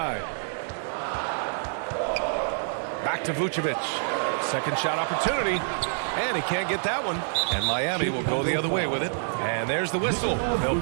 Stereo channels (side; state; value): left; silent; 60 dB below the other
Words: Back to Vucevic. Second shot opportunity. And he can't get that one. And Miami will go the other way with it. And there's the whistle. They'll